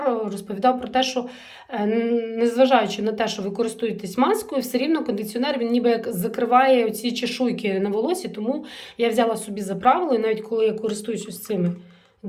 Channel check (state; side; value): identical; both; correlation 1.00